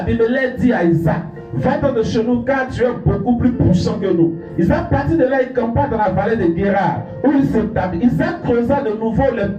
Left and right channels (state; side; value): identical; both; correlation 1.00